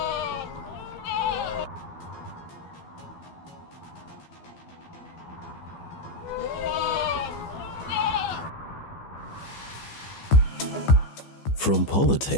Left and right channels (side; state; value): right; late; 15 ms